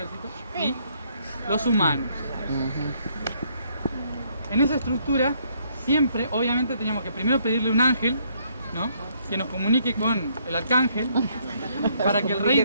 y los humanos. En esa estructura, siempre, obviamente, teníamos que primero pedirle un ángel, ¿no? que nos comunique con el arcángel para que el rey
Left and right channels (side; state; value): both; inverted; correlation -0.69